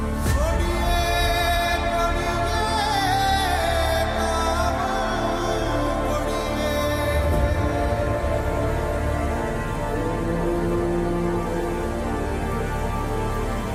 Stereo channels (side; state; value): both; identical; correlation 1.00